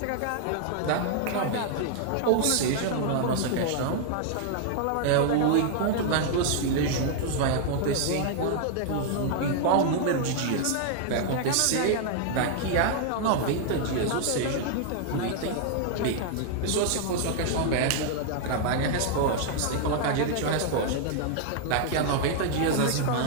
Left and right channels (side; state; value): both; different; correlation -0.01